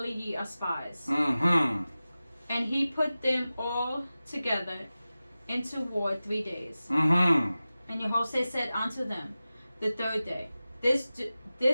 ye are spies. And he put them all together into ward 3 days. And Jehoshaphat said unto them the third day, This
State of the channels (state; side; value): inverted; both; correlation -0.96